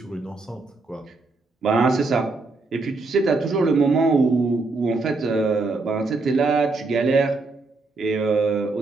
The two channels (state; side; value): quieter; left; 3.6 dB